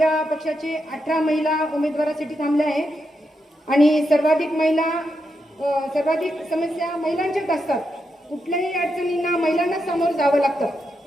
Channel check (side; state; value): both; normal; correlation 0.84